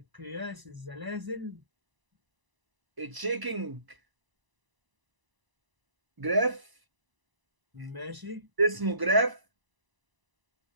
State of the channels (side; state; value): left; late; 1.0 ms